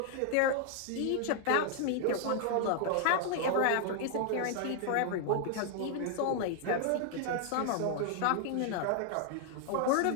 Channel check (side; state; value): both; different; correlation 0.00